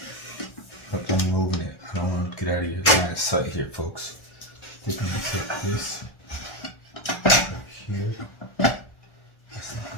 up on over there. I don't want to get out of your line of sight here, folks. I think I'm going to take this right here. That's not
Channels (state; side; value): late; right; 1.4 ms